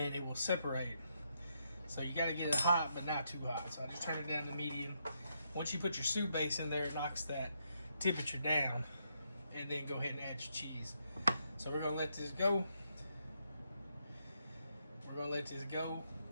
it will separate. So you gotta get it hot but not too hot. So I just turned it down to medium. Once you put your soup base in there, it knocks that temperature down, and then go ahead and add your cheese. So we're gonna let this go. We're gonna let this go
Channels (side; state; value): both; inverted; correlation -0.78